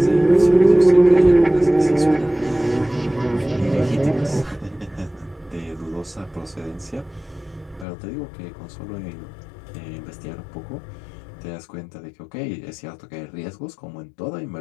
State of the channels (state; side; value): drops out; right; at 7.9 s